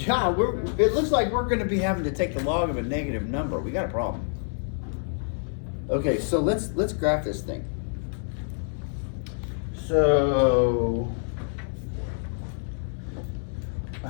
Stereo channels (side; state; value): right; silent; digital silence